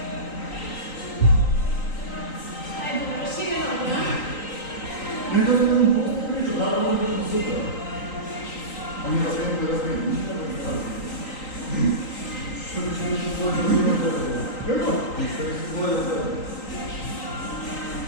Ajde, šire noge, a? Ne da sam priču, da ovo je bilo super. A mi da se imamo da razmijem. Što bi se nešto svoje da ima tebe? Kako? Što bi se svoje da tebe?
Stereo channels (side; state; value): right; late; 3.8 ms